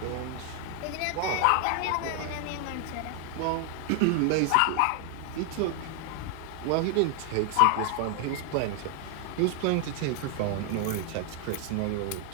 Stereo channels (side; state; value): both; different; correlation 0.00